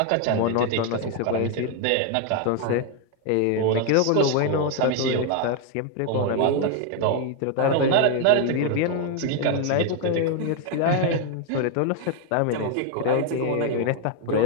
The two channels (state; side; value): different; both; correlation 0.01